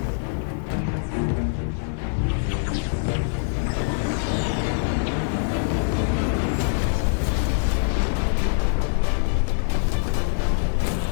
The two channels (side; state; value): right; silent; 63 dB below the other